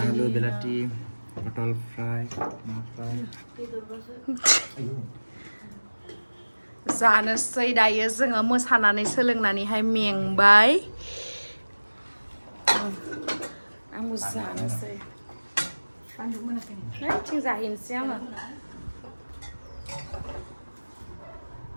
बेलाथि पटल फ्राय ना फ्राय जानोसै दायो जोङो मोसानानै सोलोंनानैहाय मेंबाय आंबो जानोसै थिं जाहैनोसै आङो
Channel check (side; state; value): both; inverted; correlation -1.00